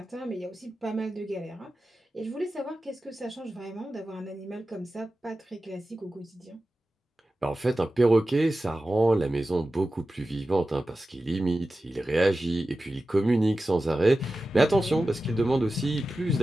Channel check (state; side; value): normal; both; correlation 0.94